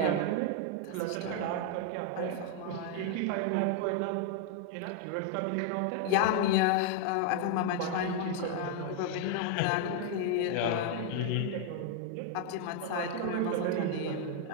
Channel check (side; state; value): both; different; correlation 0.00